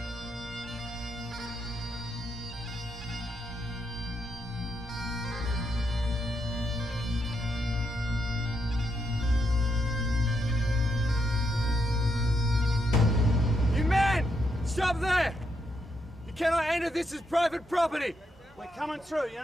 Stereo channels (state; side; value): normal; both; correlation 0.80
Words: Stop there! You cannot enter this as private property! We're coming through, you're